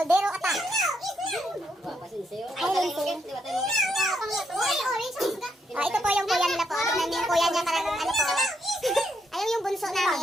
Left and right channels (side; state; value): both; normal; correlation 0.77